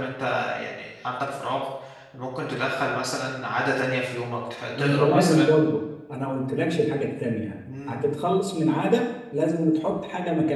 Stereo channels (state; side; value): identical; both; correlation 1.00